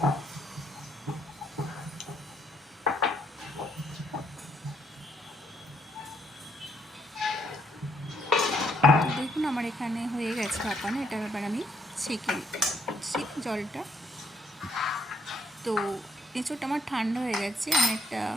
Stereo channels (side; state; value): both; normal; correlation 0.71